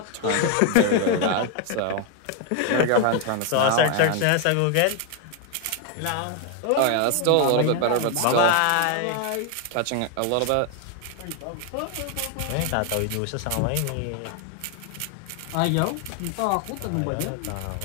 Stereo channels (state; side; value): different; both; correlation 0.01